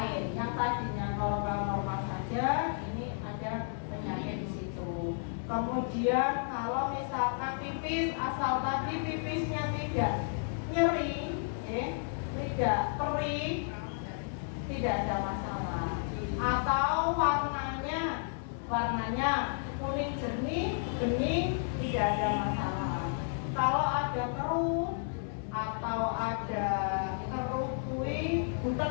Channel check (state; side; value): silent; right; digital silence